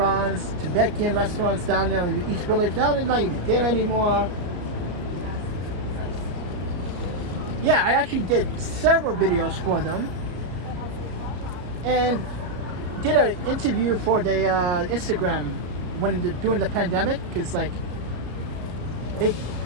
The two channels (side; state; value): left; late; 33 ms